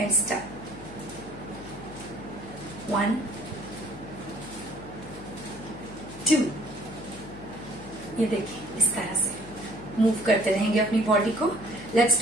start. 1 2। ये देखिए, इस तरह से मूव करते रहेंगे अपनी बॉडी को। Let's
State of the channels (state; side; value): noise; left; hum, 14 dB below the sound